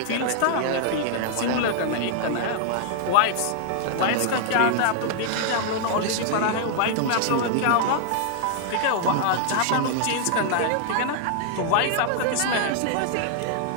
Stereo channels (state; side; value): different; both; correlation -0.01